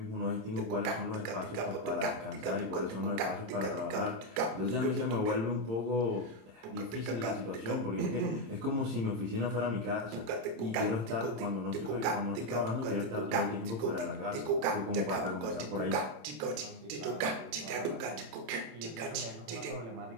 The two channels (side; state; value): left; late; 27 ms